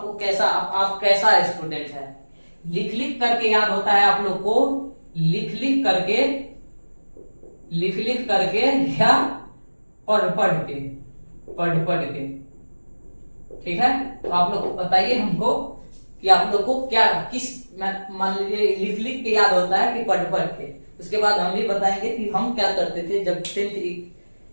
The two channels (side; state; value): both; inverted; correlation -1.00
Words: को कैसा, आप कैसा स्टूडेंट है। लिख लिख करके याद होता है आप लोग को, लिख लिख करके या पढ़ पढ़ के। ठीक है, तो आप लोग बताइए हमको कि आप लोग को क्या, किस, मान लीजिए लिख लिख के याद होता है कि पढ़ के। उसके बाद हम भी बताएंगे कि हम क्या करते थे जब 10th